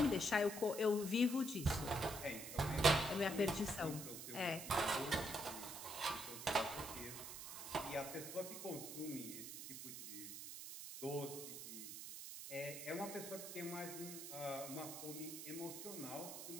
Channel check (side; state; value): right; noise; hiss, 8 dB below the sound